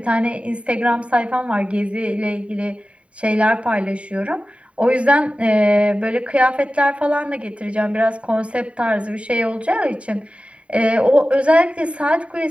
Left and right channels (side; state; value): left; late; 0.063 ms